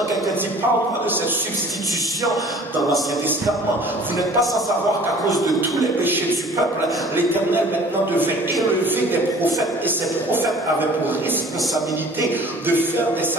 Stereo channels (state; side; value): normal; both; correlation 0.49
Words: quelqu'un dit, parle-moi de cette substitution dans l'Ancien Testament. Vous n'êtes pas sans savoir qu'à cause de tous les péchés du peuple, l'Éternel maintenant devait élever des prophètes, et ces prophètes avaient pour responsabilité de faire des